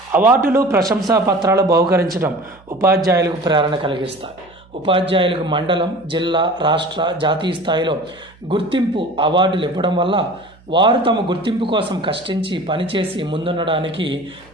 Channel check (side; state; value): right; noise; hum, 28 dB below the sound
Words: అవార్డులు, ప్రశంసా పత్రాలు బహుకరించడం ఉపాధ్యాయులకు ప్రేరణ కలిగిస్తాయి. ఉపాధ్యాయులకు మండలం, జిల్లా, రాష్ట్ర, జాతీయ స్థాయిలో గుర్తింపు అవార్డులు ఇవ్వడం వల్ల వారు తమ గుర్తింపు కోసం కష్టించి పనిచేసి ముందుండడానికి